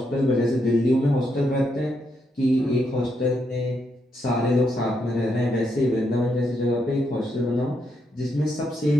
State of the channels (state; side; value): normal; both; correlation 0.79